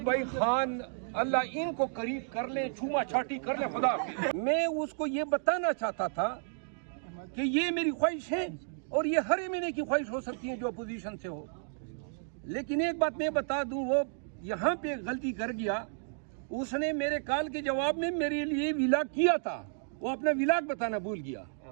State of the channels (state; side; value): silent; left; digital silence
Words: بھائی خان اللہ ان کو قریب کر لیں، چھوما چھاٹی کر لیں، خدا حافظ۔ میں اس کو یہ بتانا چاہتا تھا کہ یہ میری خواہش ہے، اور یہ ہر مہینے کی خواہش ہو سکتی ہے جو اپوزیشن سے ہو، لیکن ایک بات میں بتا دوں، وہ یہاں پہ غلطی کر گیا۔ اس نے میرے کال کے جواب میں میرے لیے ولاگ کیا تھا، وہ اپنا ولاگ بتانا بھول گیا۔